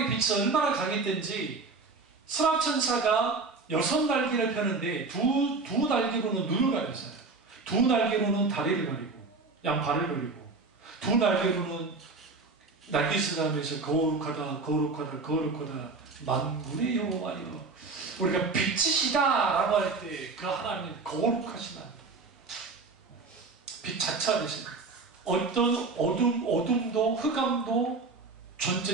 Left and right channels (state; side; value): quieter; left; 4.0 dB